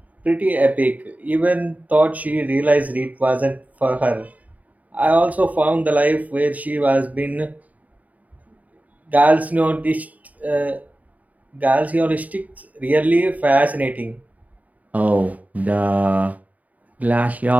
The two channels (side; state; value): left; late; 0.073 ms